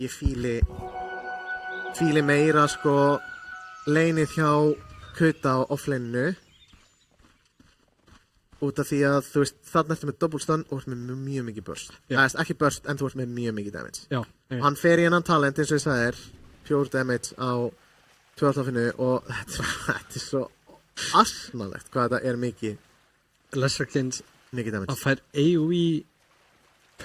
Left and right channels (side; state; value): both; identical; correlation 1.00